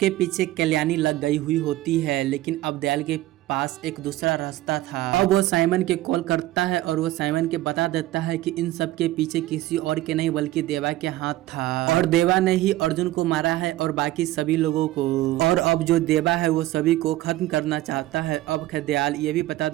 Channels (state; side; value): quieter; left; 16.2 dB